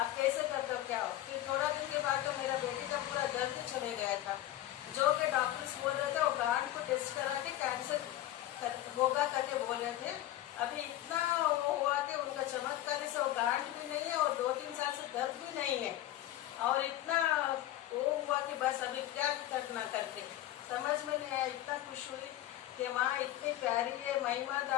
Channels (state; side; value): quieter; right; 14.1 dB